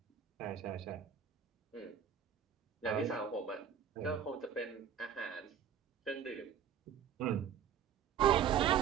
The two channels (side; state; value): left; quieter; 8.4 dB